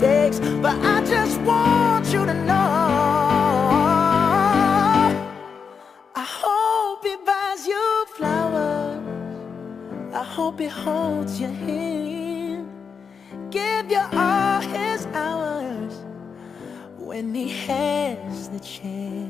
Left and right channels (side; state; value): right; quieter; 6.1 dB